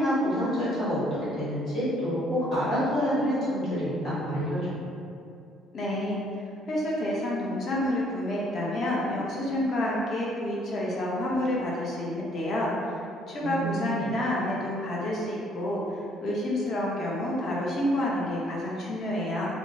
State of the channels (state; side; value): normal; both; correlation 0.64